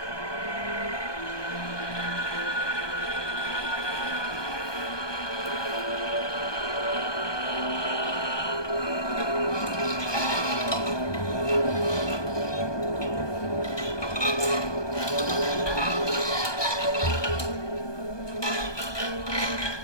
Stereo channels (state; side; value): late; right; 1.2 ms